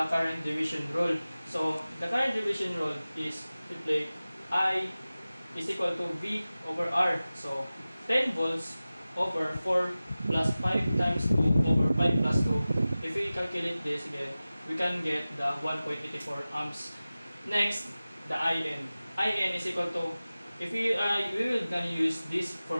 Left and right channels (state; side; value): inverted; both; correlation -0.97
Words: current division rule. So the current division rule is simply I is equal to V over R. So 10 volts over 4 plus 5 times 2 over 5 plus 2. If we calculate this again, we can get the 1.84 amps. Next, the IN. IN is equal to, if we will gonna use this